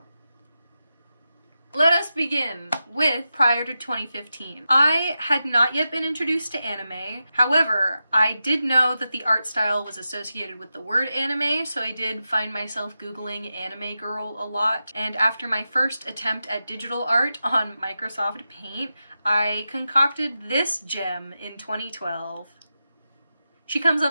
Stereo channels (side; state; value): both; inverted; correlation -0.90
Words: Let us begin with prior to 2015. I had not yet been introduced to anime. However, I did know that the art style was associated with the word anime, so I did find myself Googling anime girl a lot. And after my first attempt at digital art on Microsoft Paint, I concocted this gem in 2012. She comes